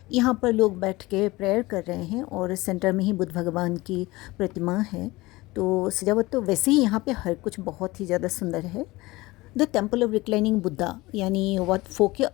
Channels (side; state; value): right; quieter; 20.7 dB